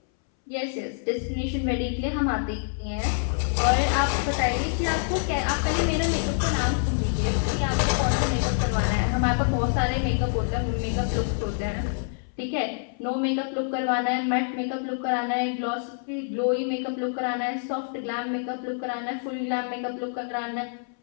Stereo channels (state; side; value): silent; right; 61 dB below the other